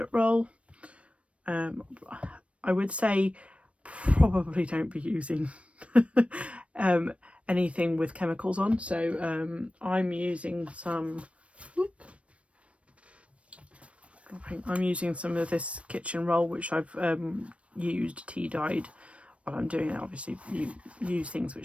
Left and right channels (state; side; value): late; left; 0.062 ms